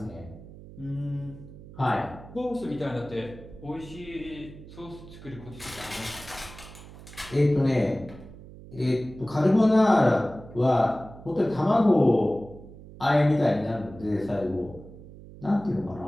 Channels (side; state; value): right; noise; hum, 17 dB below the sound